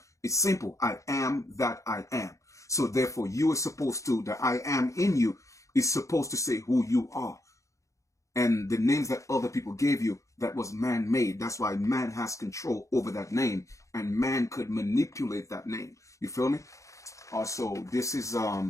it's simple. I am that I am. So therefore, you are supposed to, the I am in you is supposed to say who you are. And the names that other people gave you, that was man-made. That's why man has control over that name. And man could manipulate that name. You feel me? Also, this is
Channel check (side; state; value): right; late; 0.15 ms